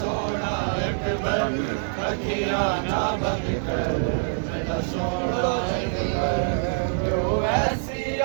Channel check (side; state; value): left; silent; digital silence